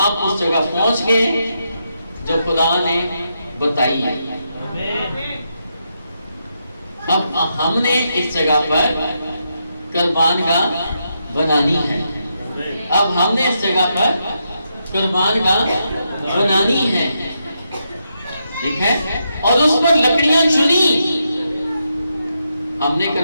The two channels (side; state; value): both; inverted; correlation -0.82